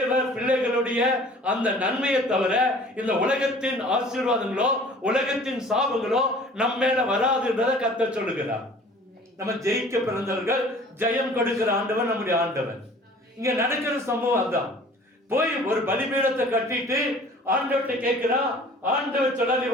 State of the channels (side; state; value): both; normal; correlation 0.49